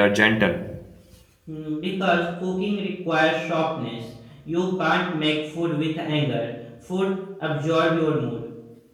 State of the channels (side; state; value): both; identical; correlation 1.00